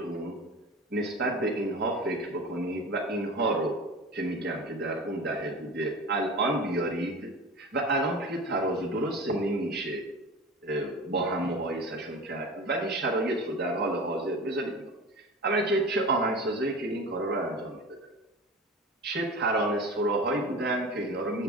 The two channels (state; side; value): normal; both; correlation 0.33